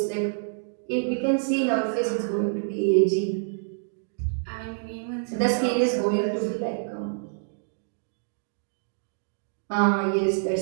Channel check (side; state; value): left; silent; digital silence